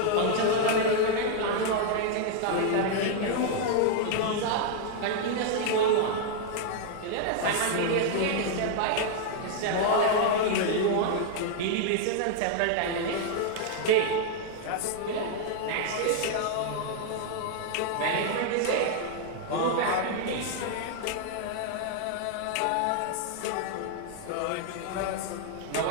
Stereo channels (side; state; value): both; different; correlation -0.01